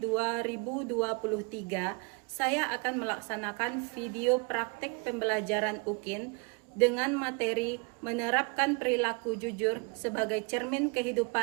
saya akan melaksanakan video praktek pembelajaran UKIN dengan materi menerapkan perilaku jujur sebagai cermin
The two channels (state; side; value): quieter; left; 32.5 dB